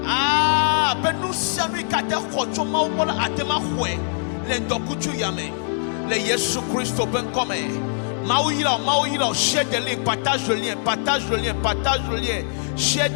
Ah, benu sianu ikate kochoma ubola atema hwe. Lendo kuchuya me. Le Yesu Christo ben comme Maouira, share the link, partage le lien, partage le lien, partage le lien, share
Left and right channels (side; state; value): right; silent; 64 dB below the other